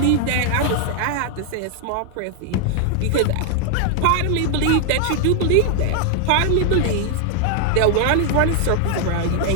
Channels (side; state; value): both; different; correlation 0.00